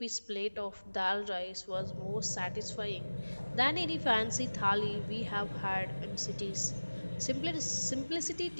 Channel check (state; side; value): inverted; both; correlation -1.00